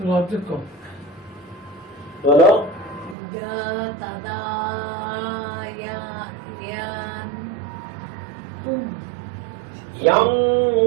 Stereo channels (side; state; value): left; drops out; at 3.2 s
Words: অর্ধেক কম বলো। ইয়া তাদা ইয়া ইয়ান ইয়াং,